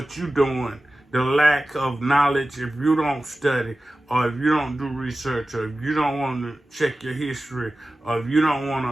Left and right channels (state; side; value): normal; both; correlation 0.95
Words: you're doing, the lack of knowledge, if you don't study, or if you don't do research, or if you don't want to check your history, or if you don't want